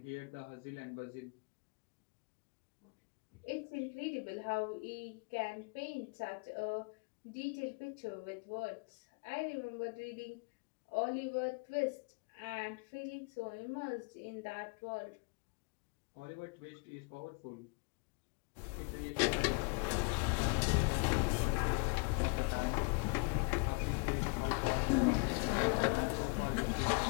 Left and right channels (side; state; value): right; quieter; 33.3 dB